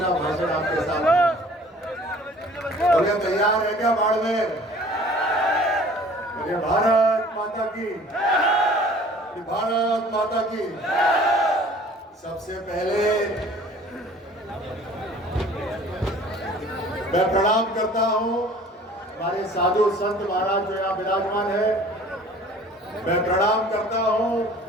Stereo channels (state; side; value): normal; both; correlation 0.50